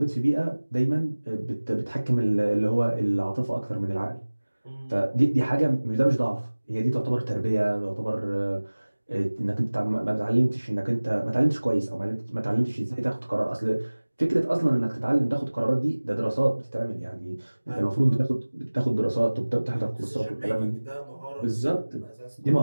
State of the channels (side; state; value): both; inverted; correlation -1.00